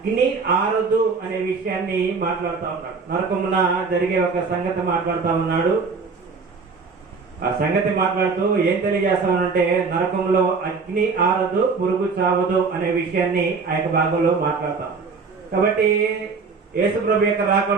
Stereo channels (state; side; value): quieter; left; 4.8 dB